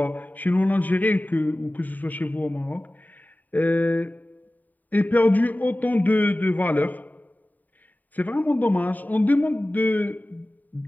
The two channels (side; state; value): right; late; 0.084 ms